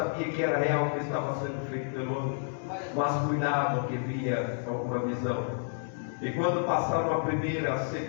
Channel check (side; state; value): right; silent; digital silence